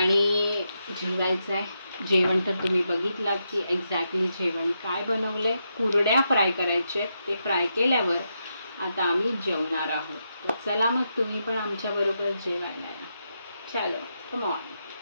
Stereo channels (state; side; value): inverted; both; correlation -0.84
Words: जेवायचं आहे. जेवण तर तुम्ही बघितलात की एक्झॅक्टली जेवण काय बनवलंय. कुरड्या फ्राय करायचे आहेत, ते फ्राय केल्यावर आता आम्ही जेवणार आहोत. तर चला मग तुम्ही पण आमच्या बरोबर जेवायला या. चलो कम ऑन.